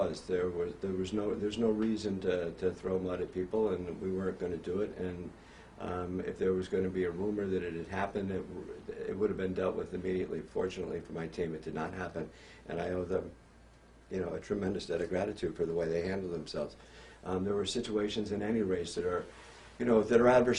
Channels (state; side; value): identical; both; correlation 1.00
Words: There's no reason to throw mud at people, and we weren't going to do it. And if there was going to be a rumor that it had happened, it would have been dealt with immediately. Fortunately for my team, it did not happen, and I owe them, you know, a tremendous debt of gratitude for the way they handled themselves. There were situations in any race that are, you know, that are